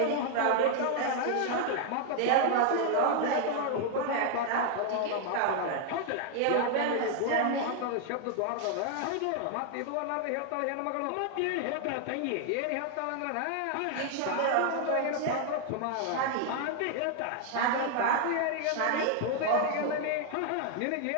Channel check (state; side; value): different; both; correlation 0.00